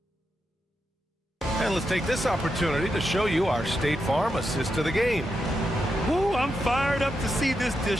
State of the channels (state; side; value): normal; both; correlation 0.86